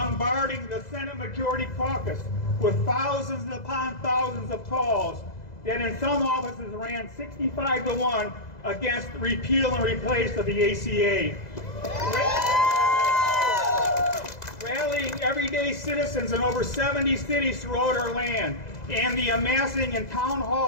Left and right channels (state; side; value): late; right; 2.0 ms